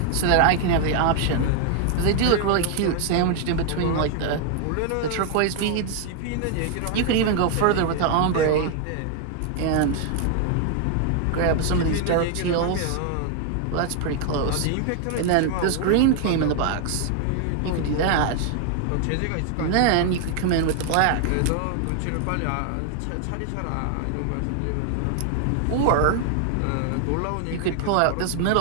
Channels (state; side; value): different; both; correlation 0.00